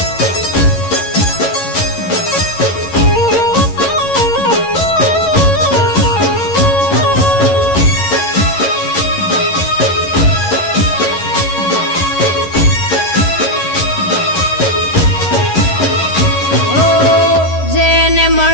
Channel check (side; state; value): right; late; 11 ms